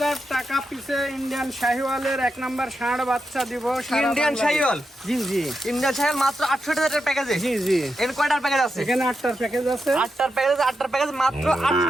টাকা পিছে ইন্ডিয়ান শাহিওয়ালের 1 নাম্বার ষাঁড় বাচ্চা দিব। ইন্ডিয়ান শাহিওয়াল? জি জি, ইন্ডিয়ান শাহিওয়াল মাত্র 68,000 টাকার প্যাকেজে? জি জি। এর কয়টার প্যাকেজ আছে? এখানে 8টার প্যাকেজ আছে। 8টার প্যাকেজ মাত্র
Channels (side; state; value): both; normal; correlation 0.87